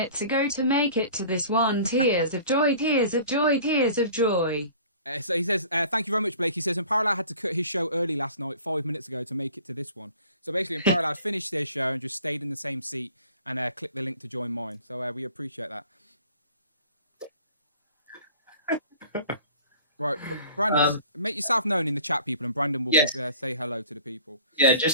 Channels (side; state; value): both; inverted; correlation -0.47